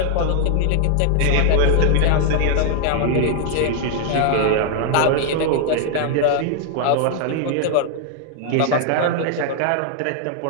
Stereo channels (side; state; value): both; different; correlation 0.00